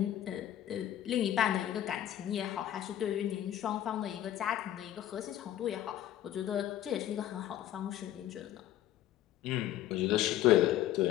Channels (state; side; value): quieter; right; 12.3 dB